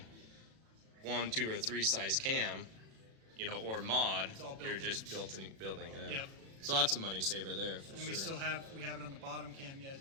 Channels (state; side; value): late; left; 36 ms